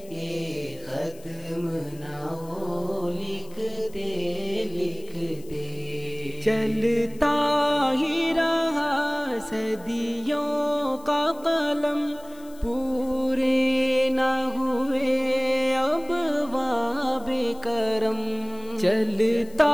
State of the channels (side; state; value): left; noise; hiss, 24 dB below the sound